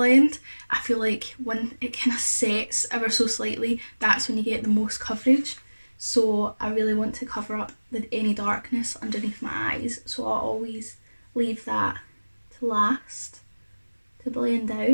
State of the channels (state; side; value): inverted; both; correlation -1.00